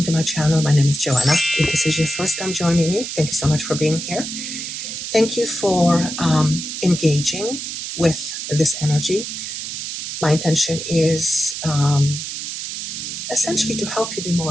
to my channel. My name is Joanna. If this is your first time joining me, thank you so much for being here. Thank you for engaging with this energy. My intention is essentially to help you be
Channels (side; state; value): right; noise; hiss, 6 dB below the sound